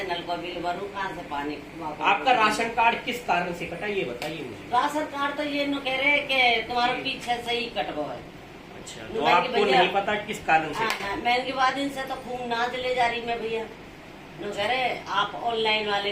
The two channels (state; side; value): identical; both; correlation 1.00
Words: नल का बिल भरूं, कहाँ से पानी। आपका राशन कार्ड किस कारण से कटा, ये बताइए मुझे। राशन कार्ड तो ये न कह रहे कि तुम्हारे पीछे से ही कटवा है। अच्छा, तो आपको नहीं पता किस कारण से? मैं इनके बाद इनसे तो खूब नाच ले जा रही मैं भैया। न कह रहे आप ऑनलाइन वाले